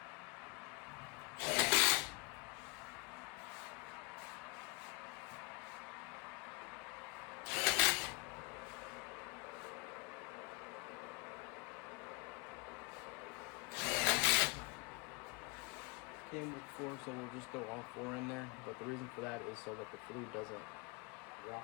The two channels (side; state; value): right; quieter; 29.9 dB